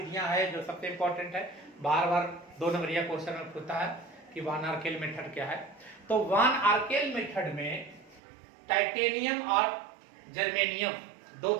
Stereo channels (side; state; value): left; drops out; at 8.2 s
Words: है जो सबसे इंपॉर्टेंट है। बार बार 2 नंबरिया क्वेश्चन में पूछता है कि वान आर्केल मेथड क्या है। तो वान आर्केल मेथड में टाइटेनियम और जर्मेनियम, 2